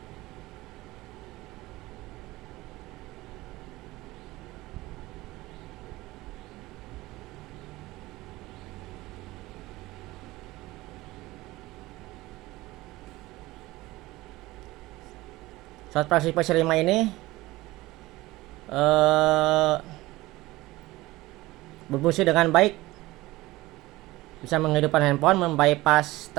Saat versi 5 ini berfungsi dengan baik, bisa menghidupkan handphone, membypass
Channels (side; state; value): left; quieter; 19.0 dB